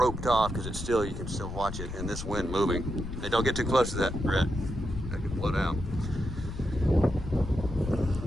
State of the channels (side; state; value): left; noise; rumble, 7 dB below the sound